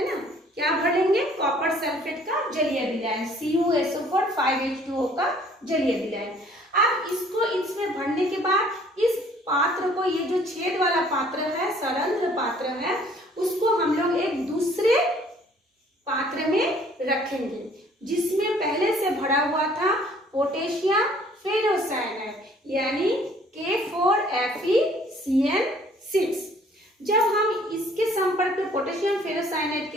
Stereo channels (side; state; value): both; normal; correlation 0.57